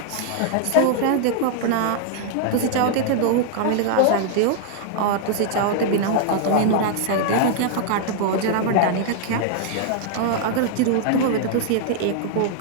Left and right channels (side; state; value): both; different; correlation -0.01